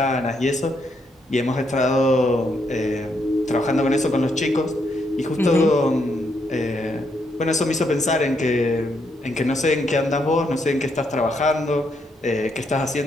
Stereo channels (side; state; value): both; normal; correlation 0.77